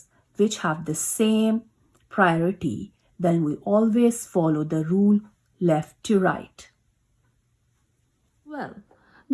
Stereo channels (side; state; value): both; identical; correlation 1.00